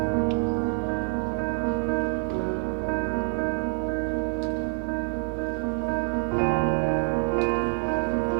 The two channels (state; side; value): silent; left; 60 dB below the other